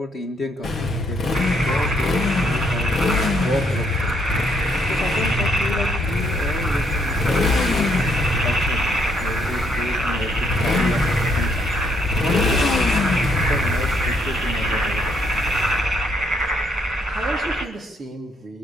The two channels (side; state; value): both; normal; correlation 0.72